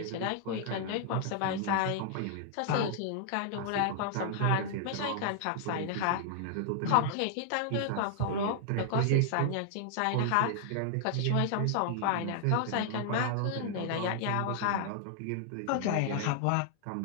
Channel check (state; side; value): different; both; correlation 0.00